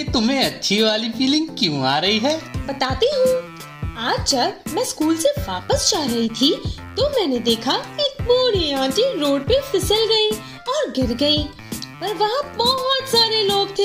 तुम्हें अच्छी वाली फीलिंग क्यों आ रही है? बताती हूँ। आज जब मैं स्कूल से वापस जा रही थी तो मैंने देखा एक बूढ़ी आंटी रोड पे फिसल गई और गिर गई। पर वहाँ बहुत सारे लोग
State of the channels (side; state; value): both; identical; correlation 1.00